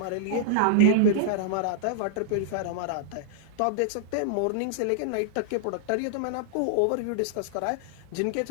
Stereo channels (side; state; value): both; different; correlation -0.01